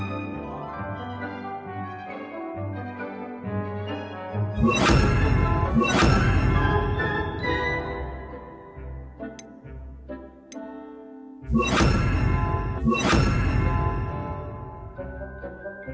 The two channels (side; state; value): both; identical; correlation 1.00